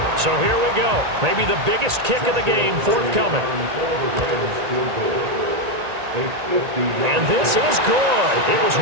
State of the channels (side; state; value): left; late; 1.8 ms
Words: So here we go. Maybe the biggest kick of the game forthcoming. And this is good. It was